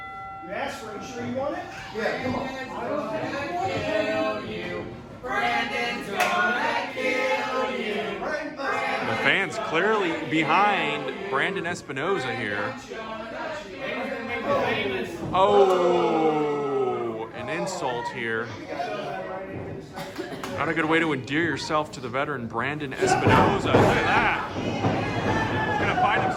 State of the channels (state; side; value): identical; both; correlation 1.00